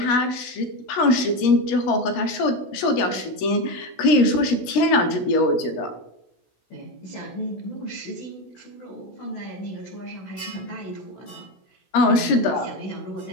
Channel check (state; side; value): late; right; 16 ms